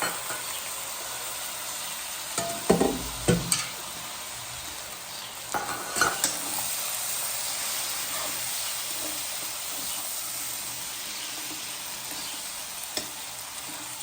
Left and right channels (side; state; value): both; identical; correlation 1.00